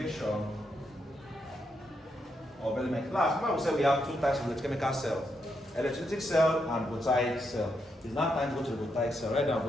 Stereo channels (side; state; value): both; normal; correlation 0.81